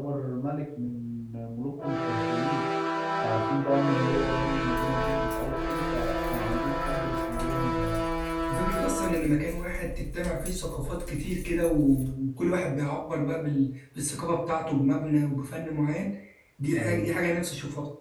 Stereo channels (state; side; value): identical; both; correlation 1.00